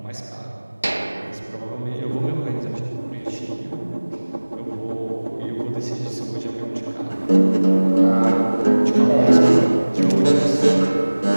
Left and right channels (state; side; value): inverted; both; correlation -1.00